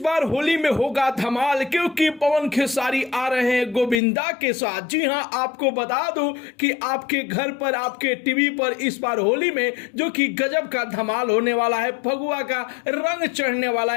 बार होली में होगा धमाल क्योंकि पवन खेसारी आ रहे हैं गोविंदा के साथ। जी हां, आपको बता दूं कि आपके घर पर, आपके टीवी पर इस बार होली में जो कि गजब का धमाल होने वाला है, फगुआ का रंग चढ़ने वाला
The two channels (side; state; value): right; drops out; at 4.0 s